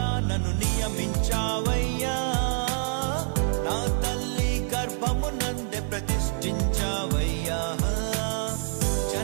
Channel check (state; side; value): silent; left; 60 dB below the other